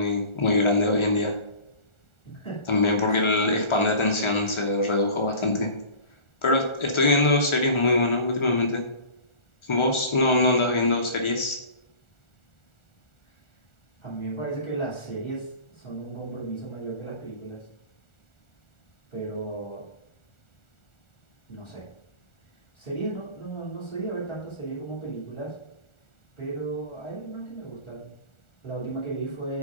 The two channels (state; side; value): late; right; 1.4 ms